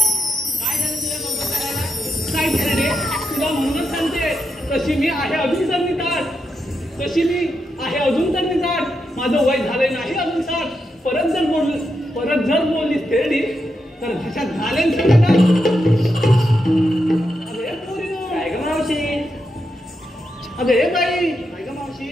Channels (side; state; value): both; normal; correlation 0.85